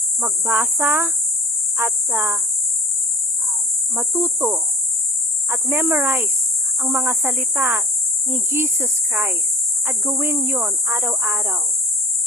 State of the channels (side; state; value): both; normal; correlation 0.44